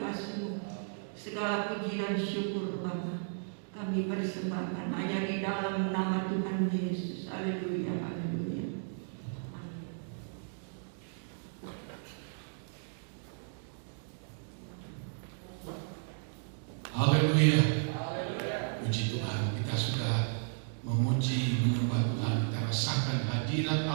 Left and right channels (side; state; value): left; silent; digital silence